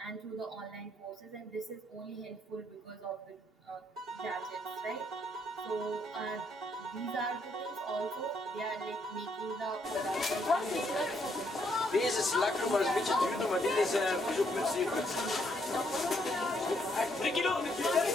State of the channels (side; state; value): both; normal; correlation 0.73